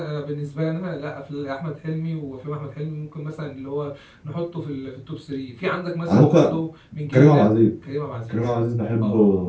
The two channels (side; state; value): both; identical; correlation 1.00